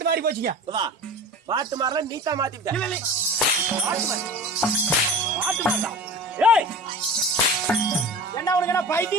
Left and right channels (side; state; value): both; normal; correlation 0.35